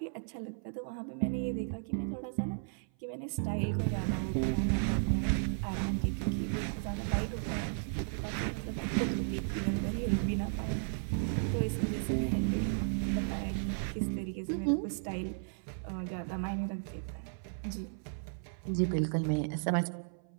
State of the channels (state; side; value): silent; left; 55 dB below the other